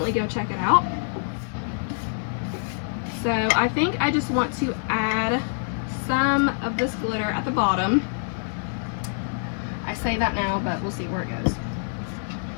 go check it out. So I think I just want to add some of this glitter at the bottom. I say that now, but we'll see where it goes.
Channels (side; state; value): right; silent; digital silence